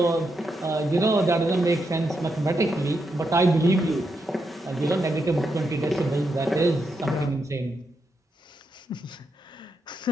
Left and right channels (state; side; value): normal; both; correlation 0.83